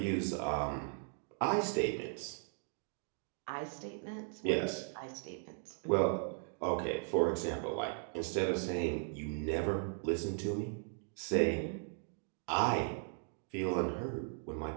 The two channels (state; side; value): silent; left; 53 dB below the other